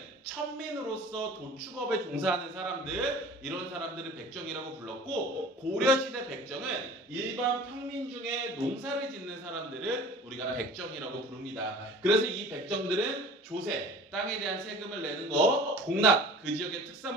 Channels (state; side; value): normal; both; correlation 0.43